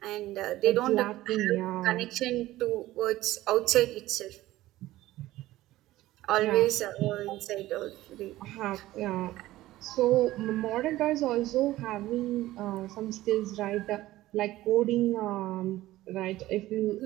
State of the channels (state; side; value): quieter; left; 16.2 dB